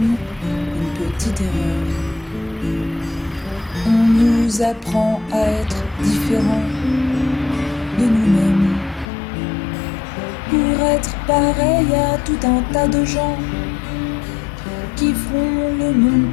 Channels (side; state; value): right; drops out; at 9.1 s